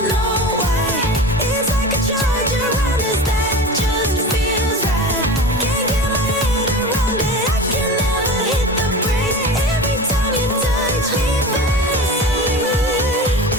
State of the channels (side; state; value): both; normal; correlation 0.32